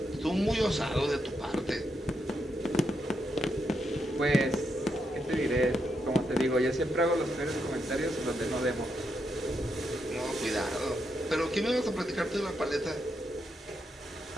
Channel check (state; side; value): normal; both; correlation 0.81